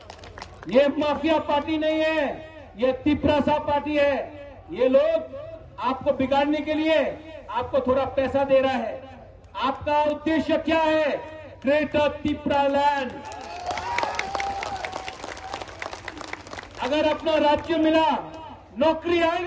ये माफिया पार्टी नहीं है, ये तिपरासा पार्टी है। ये लोग आपको बिगाड़ने के लिए आपको थोड़ा पैसा दे रहा है। आपका उद्देश्य क्या है? Greater Tipra land. अगर अपना राज्य मिला, नौकरी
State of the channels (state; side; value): identical; both; correlation 1.00